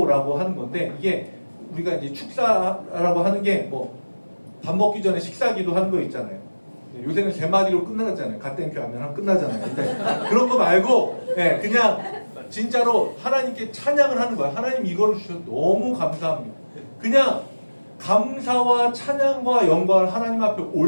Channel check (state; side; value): inverted; both; correlation -1.00